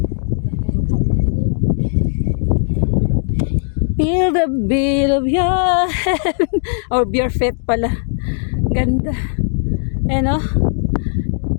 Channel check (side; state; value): right; silent; digital silence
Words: Feel the beat of your head. Or beer fit pala. Ganda. Ano?